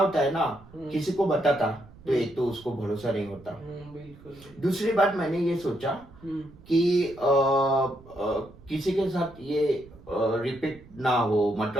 है ना, किसी को बताता तो एक तो उसको भरोसा नहीं होता। बिल्कुल। दूसरी बात मैंने ये सोचा कि किसी के साथ ये रिपीट ना हो,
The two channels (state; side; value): noise; right; rumble, 22 dB below the sound